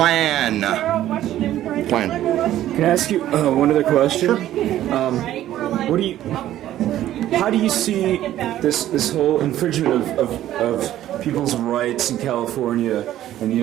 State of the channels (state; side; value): quieter; left; 13.0 dB